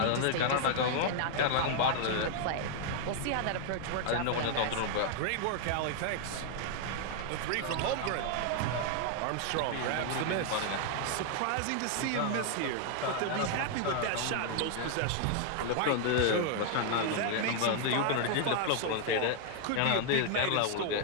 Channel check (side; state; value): both; different; correlation 0.00